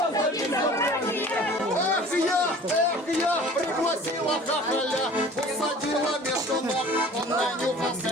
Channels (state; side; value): normal; both; correlation 0.45